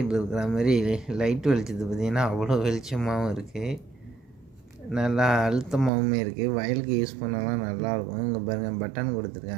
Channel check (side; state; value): left; drops out; at 5.9 s